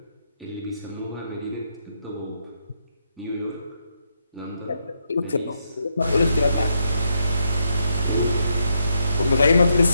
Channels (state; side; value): inverted; both; correlation -0.79